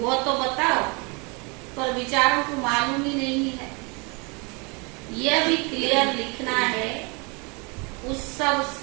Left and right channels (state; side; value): quieter; left; 30.6 dB